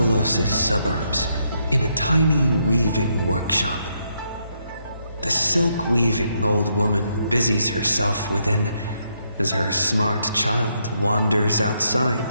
suburbs, in a tiny weaving workshop, the silk-weaving old woman busies herself within as her smart child wanders outside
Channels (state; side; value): inverted; both; correlation -0.76